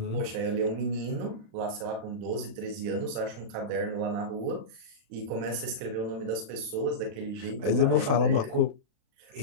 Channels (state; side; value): late; left; 36 ms